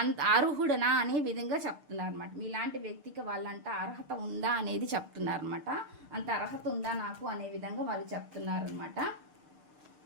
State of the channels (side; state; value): left; late; 6.6 ms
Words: అంత అర్హుడనా అనే విధంగా చెప్తున్నారు అనమాట. మీలాంటి వ్యక్తికి వాళ్ళంట అర్హత ఉందా అనేది చెప్తున్నారు అనమాట. అంత అర్హత ఉందా నాకు అనే విధంగా వాళ్ళు చెప్తున్నారు అనమాట.